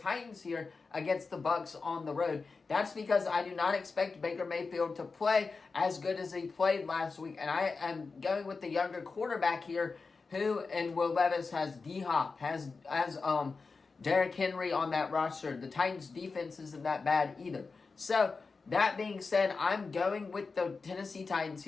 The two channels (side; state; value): right; quieter; 4.4 dB